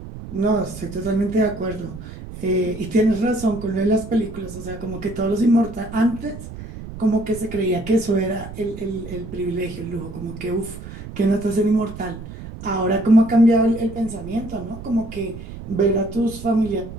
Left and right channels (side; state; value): right; noise; rumble, 12 dB below the sound